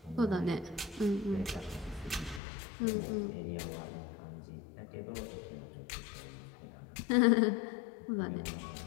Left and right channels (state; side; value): drops out; right; at 2.4 s